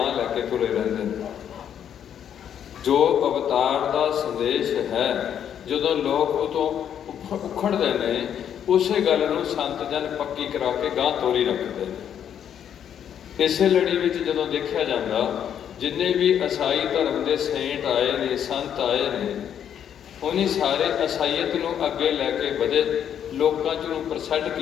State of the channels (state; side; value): quieter; right; 9.2 dB